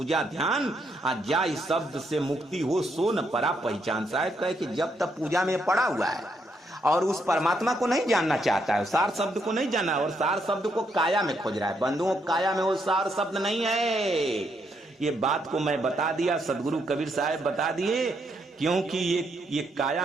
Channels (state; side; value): normal; both; correlation 0.76